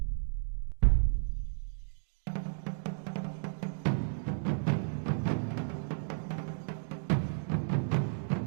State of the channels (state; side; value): silent; left; digital silence